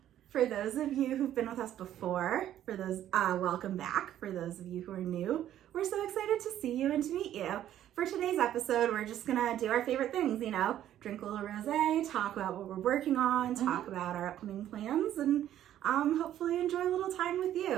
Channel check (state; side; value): quieter; left; 11.7 dB